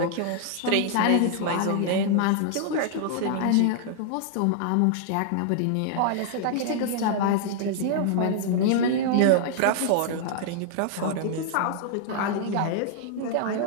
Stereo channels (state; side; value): different; both; correlation -0.01